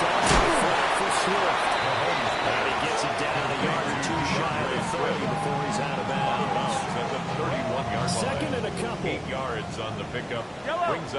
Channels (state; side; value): identical; both; correlation 1.00